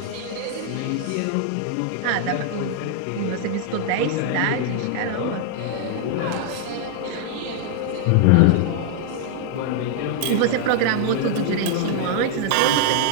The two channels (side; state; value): both; different; correlation 0.00